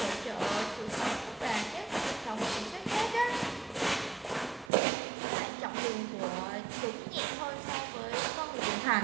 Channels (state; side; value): drops out; left; at 4.7 s